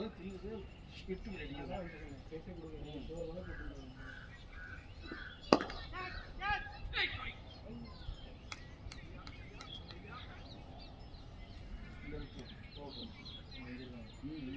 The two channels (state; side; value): identical; both; correlation 1.00